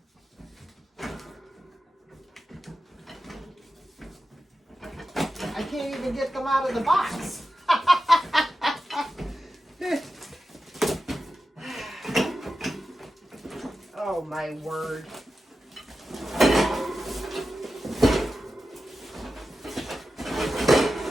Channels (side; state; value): both; normal; correlation 0.92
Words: I can't even get them out of the box. Oh, my word.